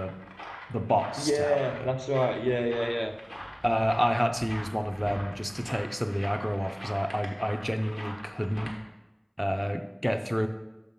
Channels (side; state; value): both; identical; correlation 1.00